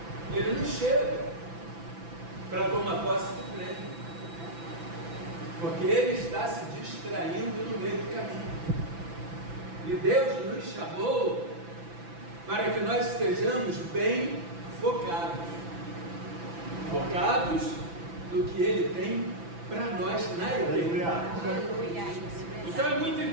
ele não chega para tomar posse do prêmio, porque ele está se distraindo no meio do caminho. E Deus nos chamou para que nós estejamos bem focados no que Ele tem para nós na igreja. Então é muito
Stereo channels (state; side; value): late; left; 6.0 ms